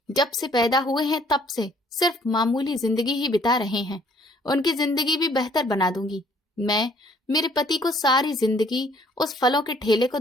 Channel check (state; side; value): normal; both; correlation 0.61